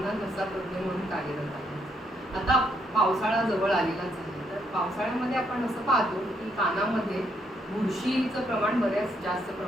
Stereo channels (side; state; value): both; normal; correlation 0.74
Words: घसा तज्ज्ञ म्हणून कार्यरत आहे. आता पावसाळा जवळ आलेलाच आहे. तर पावसाळ्यामध्ये आपण असं पाहतो की कानामध्ये बुरशीचं प्रमाण बऱ्याच जास्त